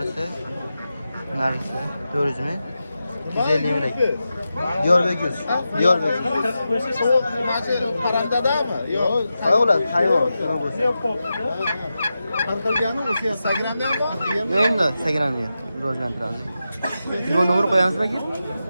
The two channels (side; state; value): both; inverted; correlation -0.91